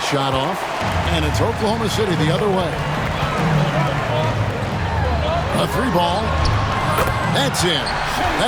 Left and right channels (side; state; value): both; identical; correlation 1.00